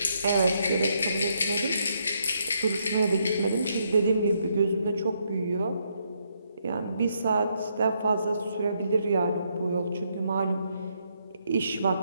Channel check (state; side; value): inverted; both; correlation -0.75